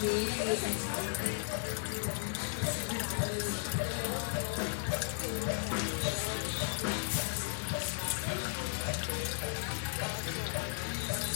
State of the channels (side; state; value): right; silent; digital silence